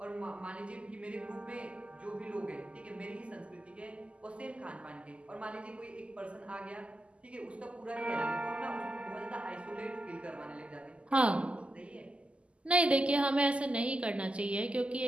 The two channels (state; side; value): late; left; 0.055 ms